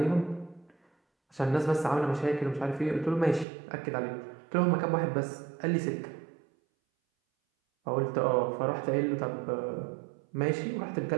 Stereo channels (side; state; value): left; drops out; at 3.5 s